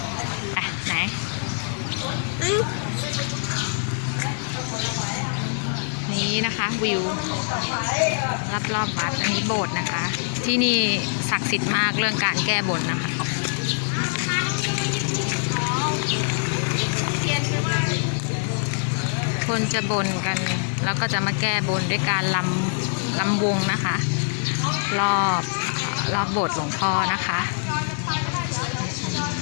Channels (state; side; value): silent; right; 63 dB below the other